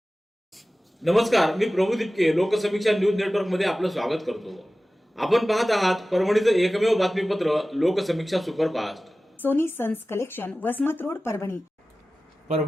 नमस्कार, मी प्रभू दिपके लोकसमीक्षा न्यूज नेटवर्क मध्ये आपलं स्वागत करतो। आपण पाहत आहात परभणीचं एकमेव बातमीपत्र Loksamiksha superfast. Sony sons collection, Vasmat road, Parbhani.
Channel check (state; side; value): normal; both; correlation 0.96